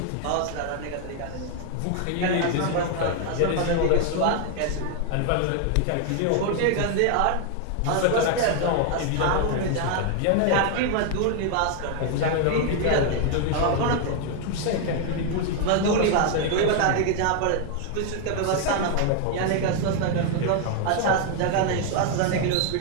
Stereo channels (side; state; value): both; different; correlation 0.00